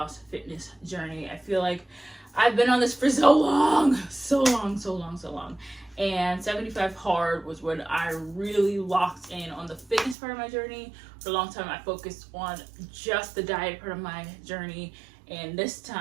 fitness journey. I feel like I've been on this for so long. And 75 hard was when I really locked in on the fitness part of my journey. For a long time, I focused on just the diet part of my journey, and this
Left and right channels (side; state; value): left; drops out; at 10.2 s